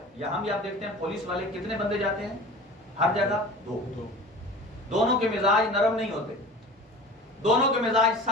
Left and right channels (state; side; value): normal; both; correlation 0.38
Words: یہاں بھی آپ دیکھتے ہیں پولیس والے کتنے بندے جاتے ہیں ہر جگہ؟ دونوں کے مزاج نرم نہیں ہوتے، دونوں کے مزاج